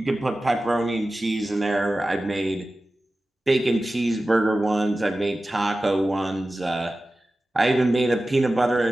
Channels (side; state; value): both; normal; correlation 0.95